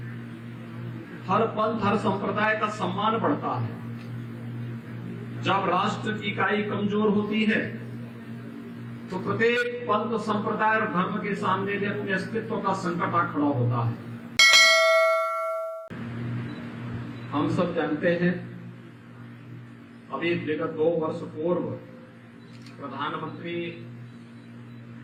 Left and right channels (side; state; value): both; identical; correlation 1.00